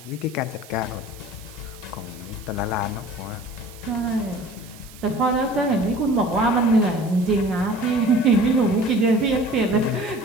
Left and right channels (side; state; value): right; noise; hiss, 21 dB below the sound